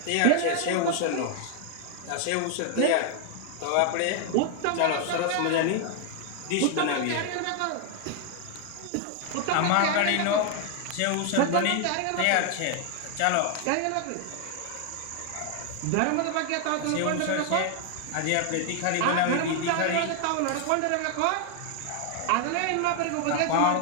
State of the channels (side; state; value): both; different; correlation 0.00